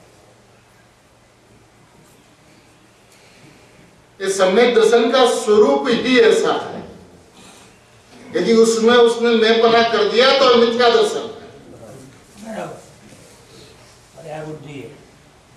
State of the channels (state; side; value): identical; both; correlation 1.00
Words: इस सम्यक दर्शन का स्वरूप ही ऐसा है। यदि उसमें उसने मैं पना कर दिया तो मिथ्या दर्शन है।